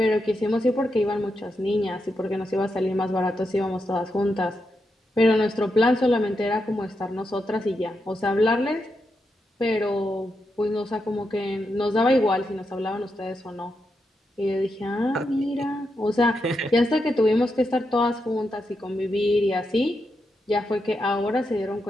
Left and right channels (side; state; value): both; normal; correlation 0.85